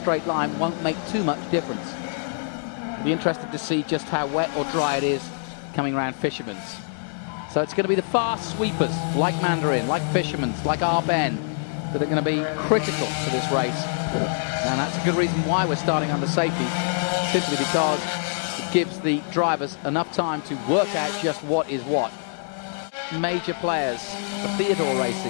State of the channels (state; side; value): silent; right; digital silence